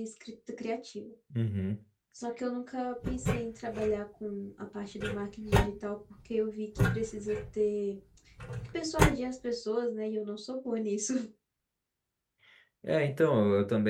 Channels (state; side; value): identical; both; correlation 1.00